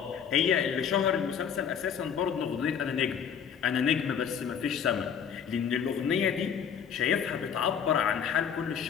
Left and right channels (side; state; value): right; quieter; 7.6 dB